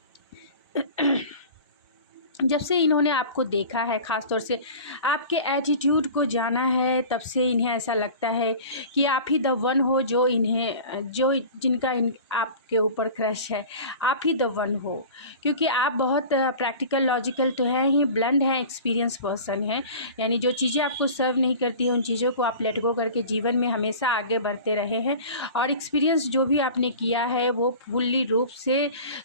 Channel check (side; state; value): both; inverted; correlation -0.39